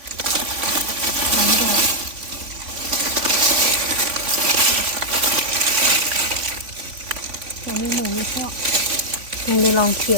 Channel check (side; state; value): left; late; 3.5 ms